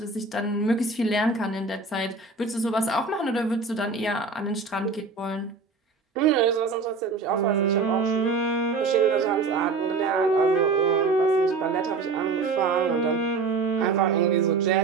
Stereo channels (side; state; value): left; quieter; 4.3 dB